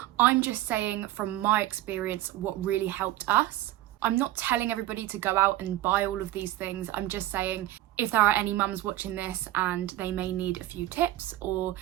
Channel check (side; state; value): left; quieter; 14.9 dB